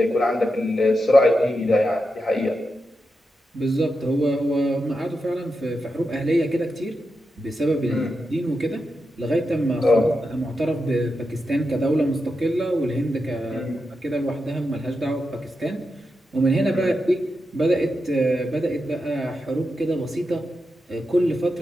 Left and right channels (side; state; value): both; normal; correlation 0.88